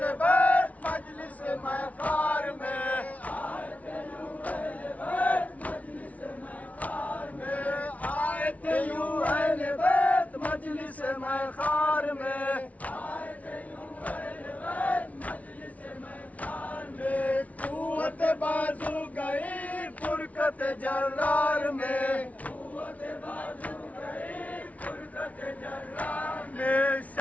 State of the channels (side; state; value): right; late; 0.069 ms